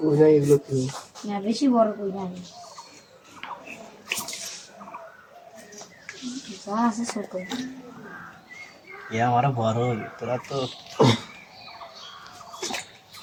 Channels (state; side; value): identical; both; correlation 1.00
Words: নাই এগুলো কি না, বেশি বড় কই নাই, যা আছে ছোট। আমার বড় তোরা তো